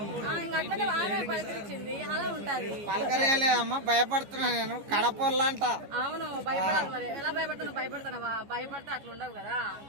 ఇంకా అట్లనే ఆమె పలకరించింది, అలా ఉంటది. పలకరేలేదమ్మా, భయపడుతున్నా నేను కడపల్లంట. అవును, భయపడాలి. మరి ఎలా భయపడుతున్నావు? భయపడుతున్నావా? భయపడితే అట్లా ఉండవు కదా,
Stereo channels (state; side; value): late; left; 14 ms